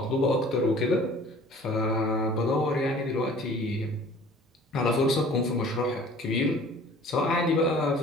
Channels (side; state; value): both; normal; correlation 0.48